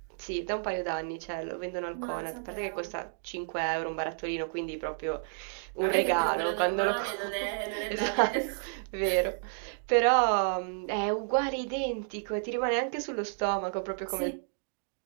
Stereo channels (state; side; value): silent; left; digital silence